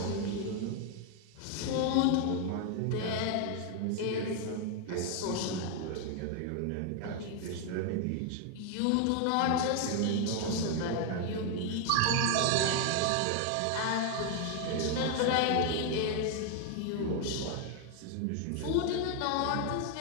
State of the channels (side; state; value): both; different; correlation 0.01